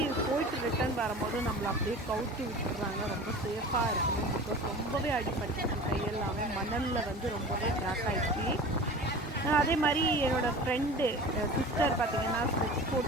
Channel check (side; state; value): both; normal; correlation 0.37